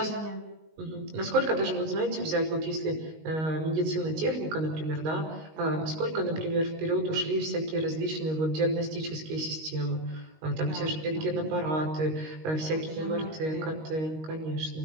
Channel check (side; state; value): left; late; 19 ms